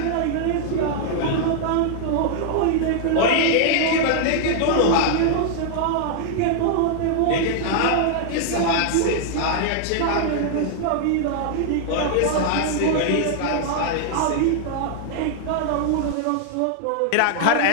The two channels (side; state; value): both; different; correlation -0.01